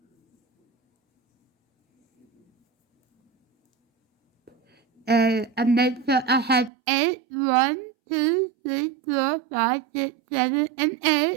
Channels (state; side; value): drops out; left; at 6.7 s